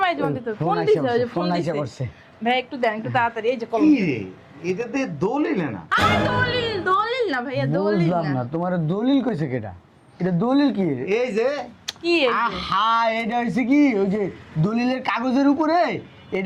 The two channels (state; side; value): identical; both; correlation 1.00